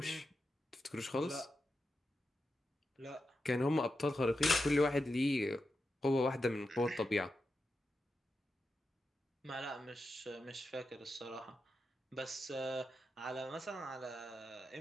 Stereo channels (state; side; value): normal; both; correlation 0.89